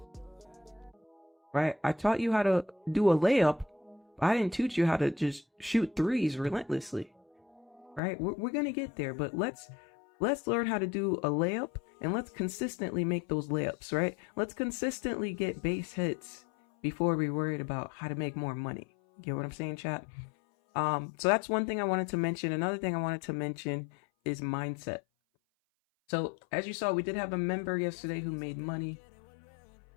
Right? I taught you how to do a layup. I didn't teach you how to just shoot threes relentlessly. Right? We're going to get there, but let's learn how to do a layup and let's consistently make those layups, right? Let's consistently get base hits before we're worried about how to make more money. Get what I'm saying, chat? So that's one thing I wanted to mention. Another thing I wanted to mention is mindset. So as you saw, we did have a member yesterday who made money.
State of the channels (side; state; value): right; drops out; at 8.0 s